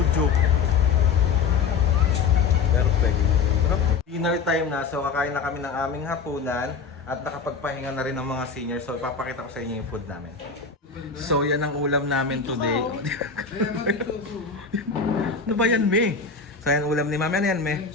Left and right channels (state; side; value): quieter; right; 5.3 dB